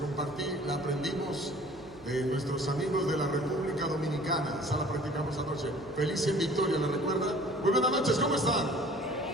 la aprendimos de nuestros amigos de la República Dominicana. Esa la practicamos anoche. Feliz en Victoria, ¿la recuerdan? Muy buenas noches, ¿cómo están?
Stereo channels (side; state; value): right; noise; hum, 24 dB below the sound